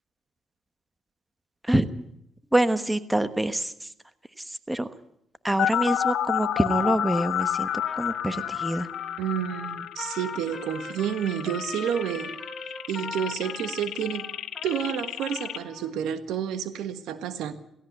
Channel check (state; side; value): normal; both; correlation 0.71